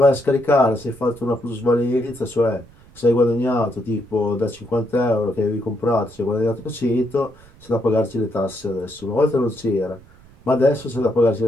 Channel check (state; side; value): noise; right; rumble, 25 dB below the sound